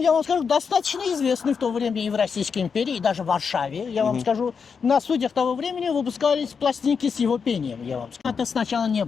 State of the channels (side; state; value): right; quieter; 5.9 dB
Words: вам скажу, достаточно известный в то время и в Российской империи, и даже в Варшаве. Я вам скажу, на студиях того времени выпускались пластинки с его пением. Я вам скажу. Это сначала не